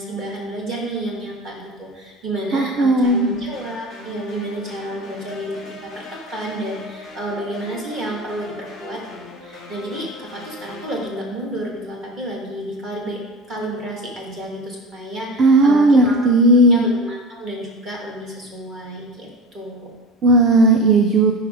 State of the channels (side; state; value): both; normal; correlation 0.31